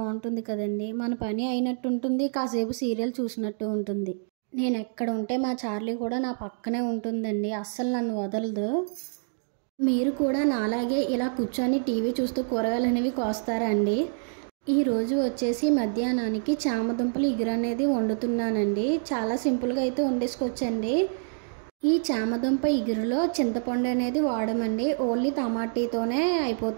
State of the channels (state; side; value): silent; left; digital silence